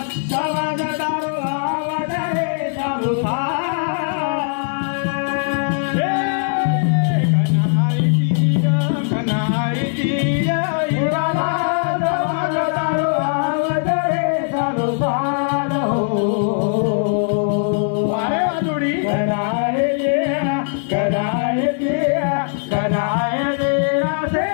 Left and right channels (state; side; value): silent; right; 66 dB below the other